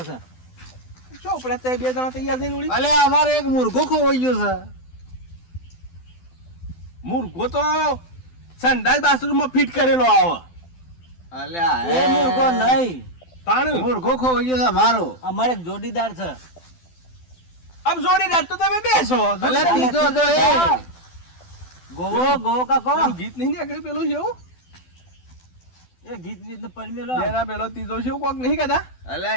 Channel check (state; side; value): late; right; 12 ms